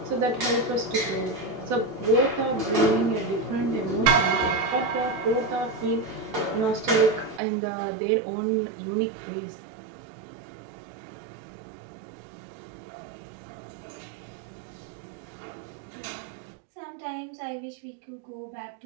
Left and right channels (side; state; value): left; drops out; at 7.4 s